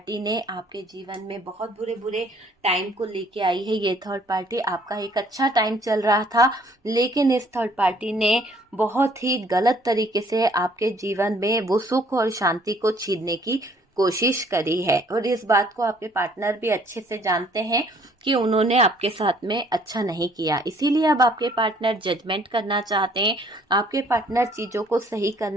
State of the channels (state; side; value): normal; both; correlation 0.61